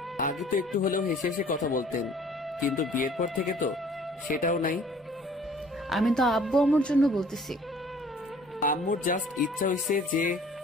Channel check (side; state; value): both; normal; correlation 0.53